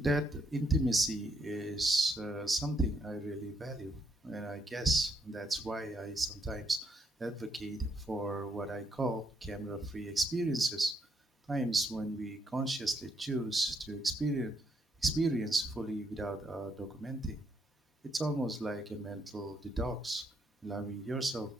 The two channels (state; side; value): normal; both; correlation 0.75